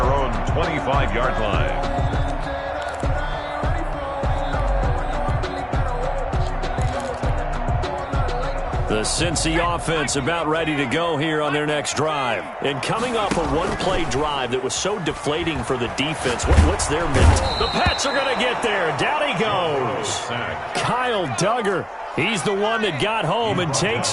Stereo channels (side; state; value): both; identical; correlation 1.00